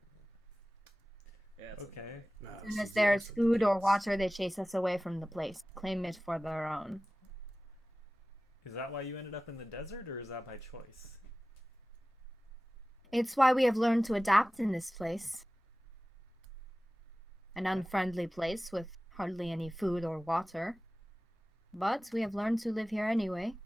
Yeah. It's Okay. Nah, As this soon as is the there's opposite. food or water, they chase us away from the place, claim it for their own. Is that why you ended up in the desert, or is that by choice? It's why we have learned to adapt in this place. An unfriendly place with hardly any food or water. But we have learned to live here anyway.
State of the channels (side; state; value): both; normal; correlation 0.97